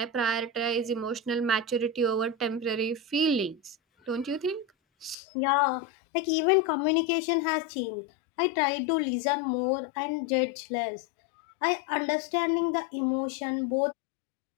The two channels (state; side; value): drops out; right; at 5.2 s